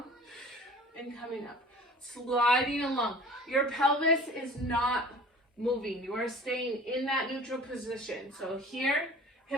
and coming up. Sliding along. Your pelvis is not moving. You are staying in that neutral position. So here,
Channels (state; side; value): normal; both; correlation 0.44